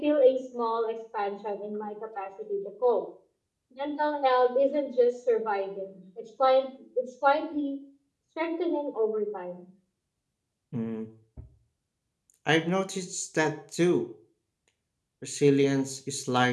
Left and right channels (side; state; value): both; identical; correlation 1.00